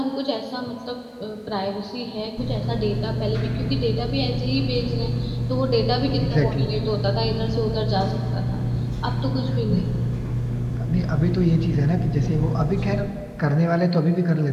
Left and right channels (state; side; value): identical; both; correlation 1.00